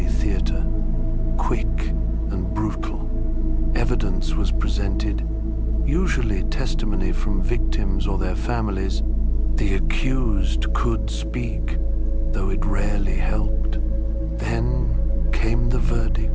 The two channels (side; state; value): both; identical; correlation 1.00